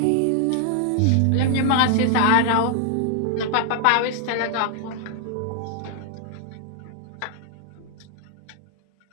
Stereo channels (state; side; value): different; both; correlation 0.00